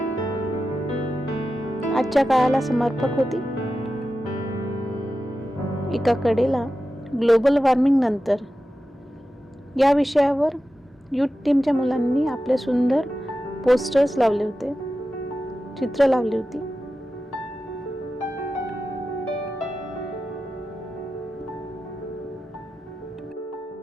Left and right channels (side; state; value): both; normal; correlation 0.92